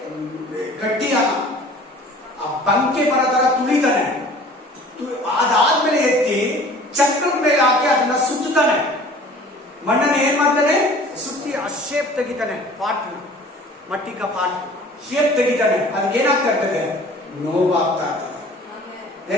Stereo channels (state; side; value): normal; both; correlation 0.47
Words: गट्टी ಬಂಕೆ ಬರೋ ತರ ತುಳಿತಾನೆ. ಅದಾದ್ಮೇಲೆ ಎತ್ತಿ ಚಕ್ರದ ಮೇಲೆ ಹಾಕಿ ಅದನ್ನ ಸುತ್ತಾನೆ. ಮಣ್ಣನ್ನು ಏನ್ ಮಾಡ್ತಾನೆ? ಸುತ್ತಿ ಆ ಶೇಪ್ ತೆಗಿತಾನೆ. ಪಾಟ್ ಮಟ್ಟಿ ಕಾ ಪಾಟ್ ಶೇಪ್ ತೆಗಿತಾನೆ. ಅದಕ್ಕೆ ಏನಾಗ್ತಾ ಇರ್ತದೆ? ನೋವಾಗ್ತಾ ಇರ್ತದೆ.